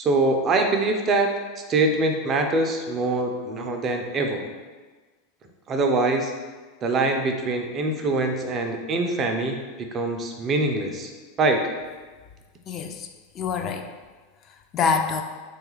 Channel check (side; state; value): both; normal; correlation 0.26